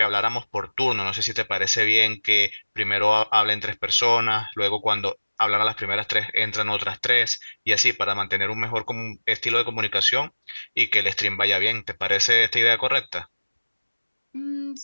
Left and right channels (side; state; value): both; inverted; correlation -1.00